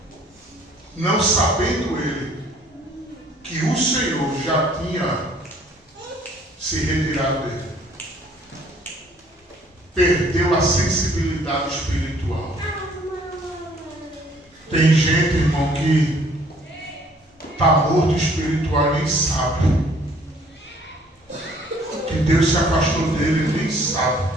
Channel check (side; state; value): both; normal; correlation 0.59